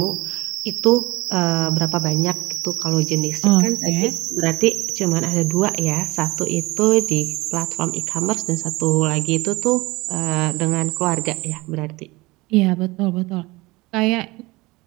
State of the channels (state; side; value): quieter; left; 22.0 dB